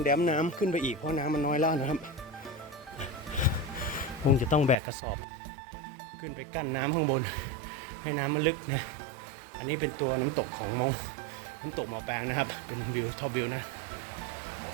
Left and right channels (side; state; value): left; drops out; at 4.8 s